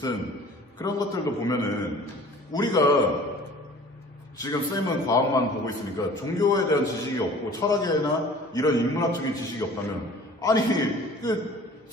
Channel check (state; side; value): normal; both; correlation 0.47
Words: 그런 것들도 보면은 우리가 지금 쌤은 과학만 보고 있으니까 종교에 대한 지식이 없고 철학이나 이런 인문학적인 지식이 없다면 아니